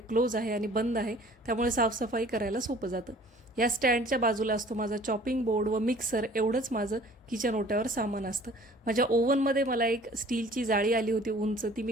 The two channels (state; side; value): normal; both; correlation 0.51